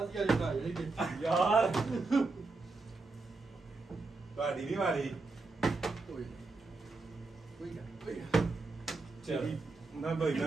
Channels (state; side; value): quieter; left; 3.6 dB